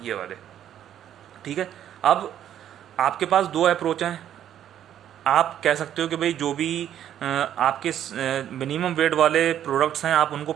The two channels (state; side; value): quieter; left; 10.6 dB